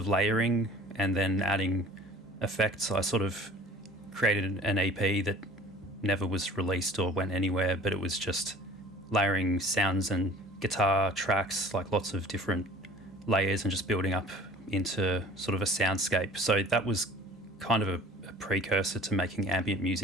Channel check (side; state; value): both; normal; correlation 0.47